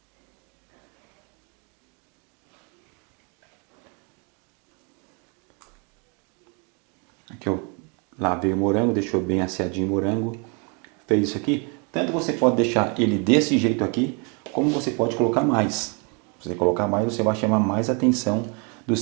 Aqui eu lavei o morango, deixou bem asseadinho o morango. Fez isso aqui. Tanto você pode deixar ele desse jeito aqui, como você pode colocar mais. Se você colocar mais, você vai chamar mais atenção do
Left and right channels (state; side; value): quieter; left; 34.6 dB